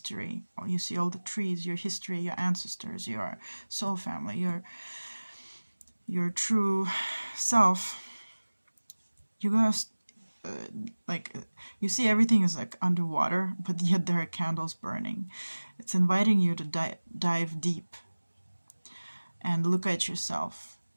or you see all the trees, your history, your ancestors, your soul family, your true self, you're gonna you see everything is like underwater, but yet there are candles burning. It's inviting you to dive deep and look at yourself,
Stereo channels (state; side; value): inverted; both; correlation -1.00